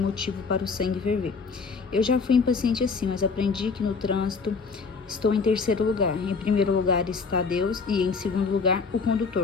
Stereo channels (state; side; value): quieter; right; 4.9 dB